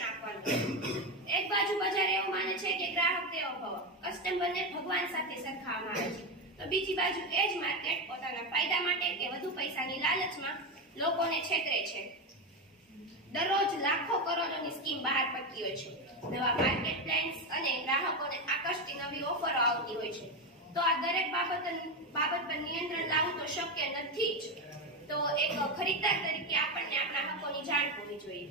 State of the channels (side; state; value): both; normal; correlation 0.13